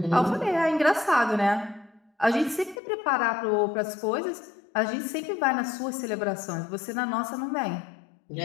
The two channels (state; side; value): drops out; right; at 2.8 s